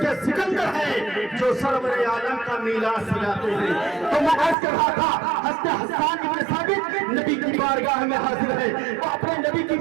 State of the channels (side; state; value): left; drops out; at 4.5 s